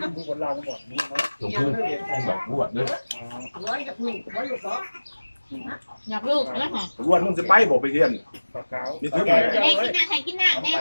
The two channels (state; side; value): inverted; both; correlation -1.00